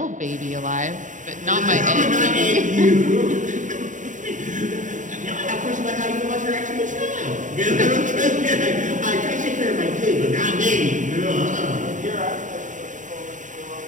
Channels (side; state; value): left; late; 0.37 ms